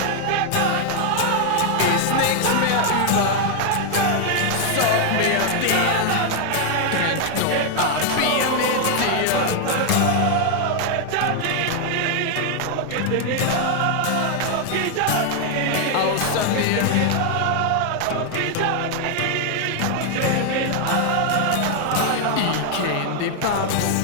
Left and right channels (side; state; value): both; different; correlation 0.00